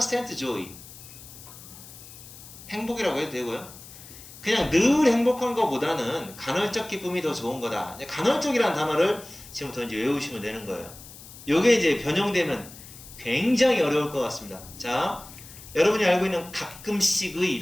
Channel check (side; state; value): left; noise; hiss, 17 dB below the sound